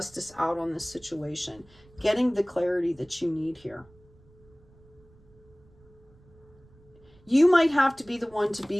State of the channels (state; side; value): noise; right; rumble, 28 dB below the sound